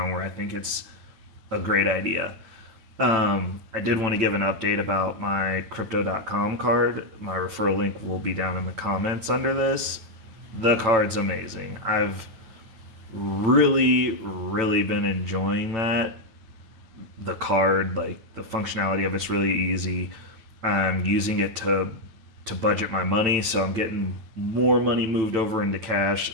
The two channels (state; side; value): late; left; 9.0 ms